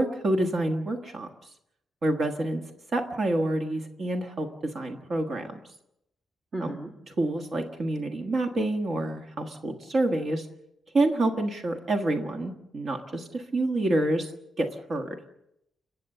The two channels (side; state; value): both; normal; correlation 0.89